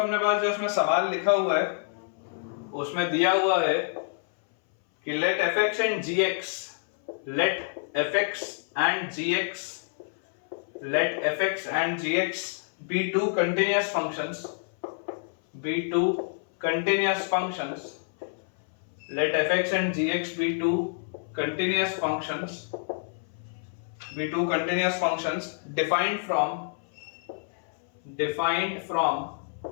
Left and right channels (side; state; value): right; silent; 59 dB below the other